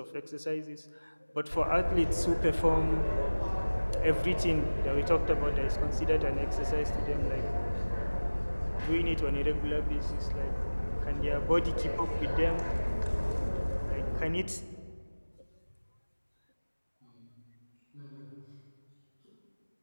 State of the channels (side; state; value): both; inverted; correlation -1.00